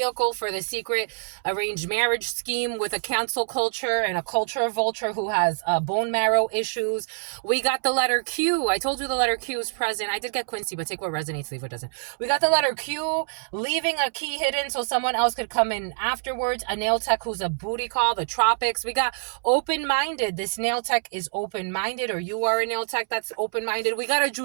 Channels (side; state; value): left; silent; 61 dB below the other